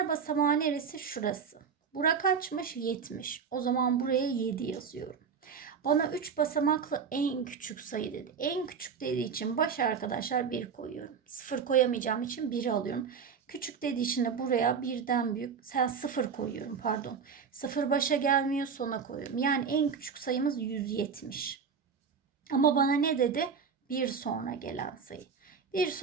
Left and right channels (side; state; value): left; quieter; 6.3 dB